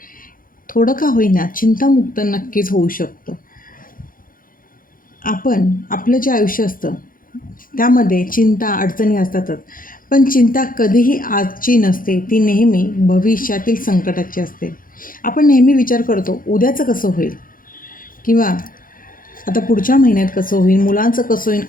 थोडं का होईना चिंतामुक्त नक्कीच होऊ शकतो. आपण आपलं जे आयुष्य असतं त्यामध्ये चिंता अडचणी असतातच, पण चिंता कधीही आजची नसते, ती नेहमी भविष्यातील संकटाची असते. आपण नेहमी विचार करतो उद्याचं कसं होईल, किंवा आता पुढच्या महिन्यात कसं होईल, मुलांचं कसं होईल,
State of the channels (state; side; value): late; right; 0.40 ms